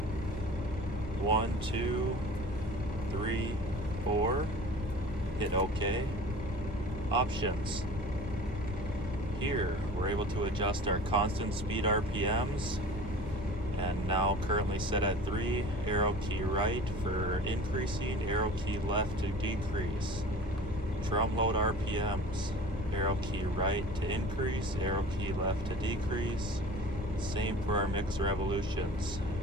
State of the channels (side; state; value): both; normal; correlation 0.40